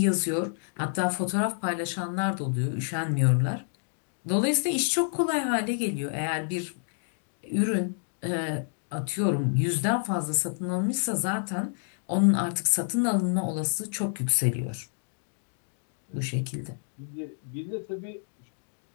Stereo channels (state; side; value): silent; right; 59 dB below the other